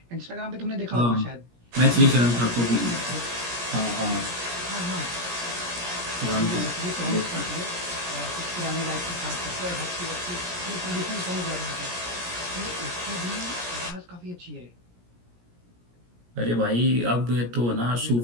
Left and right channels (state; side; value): late; left; 17 ms